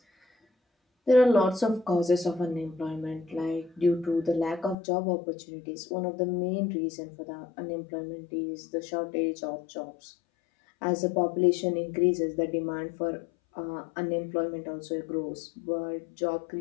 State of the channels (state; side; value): drops out; right; at 4.8 s